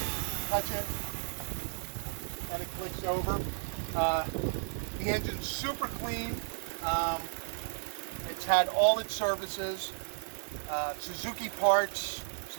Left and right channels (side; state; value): left; silent; 55 dB below the other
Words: touch it and it clicks over. The engine's super clean. It's had all its services, Suzuki parts,